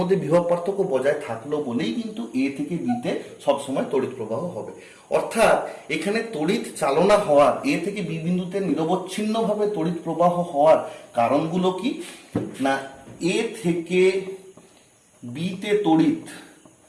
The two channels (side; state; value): both; identical; correlation 1.00